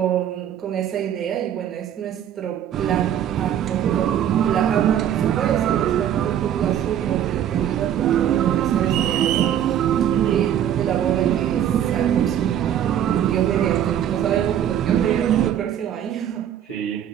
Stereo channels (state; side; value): quieter; left; 10.2 dB